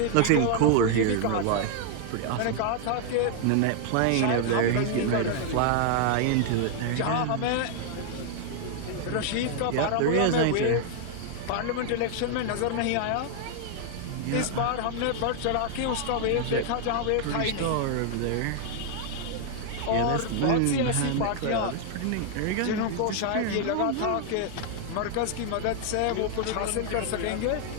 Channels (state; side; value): different; both; correlation 0.00